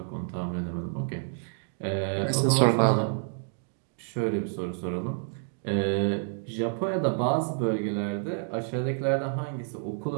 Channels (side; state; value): left; silent; digital silence